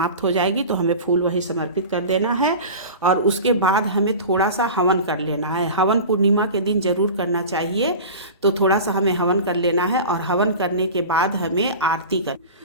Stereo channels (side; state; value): both; inverted; correlation -0.33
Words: हो जाएगी तो हमें फूल वही समर्पित कर देना है। और उसके बाद हमें थोड़ा सा हवन कर लेना है। हवन पूर्णिमा के दिन जरूर करना चाहिए। तो थोड़ा सा हमें हवन कर लेना है। और हवन करने के बाद हमें आरती कर,